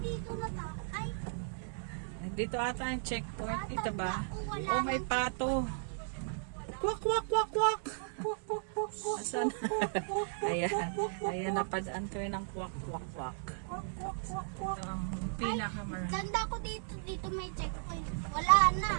na ta. Ay, Dito ata ang checkpoint. Dito ba? Wala Oh, may pato. Kwak, kwak, kwak, kwak. Asan? Ayan. Ayan, napadaan ko ng kwak, kwak, kwak. Ito ang pinakamarami. ganda ko dito. Dito may checkpoint. Wala na.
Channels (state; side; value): silent; left; 54 dB below the other